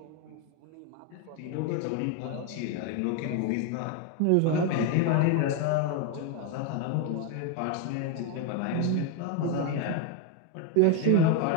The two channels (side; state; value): both; different; correlation 0.01